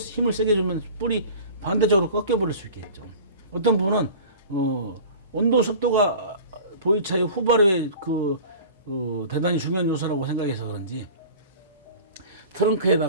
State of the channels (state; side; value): inverted; both; correlation -0.40